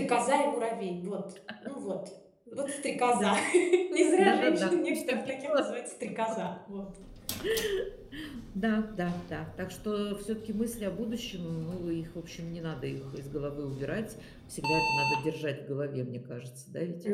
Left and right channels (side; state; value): both; identical; correlation 1.00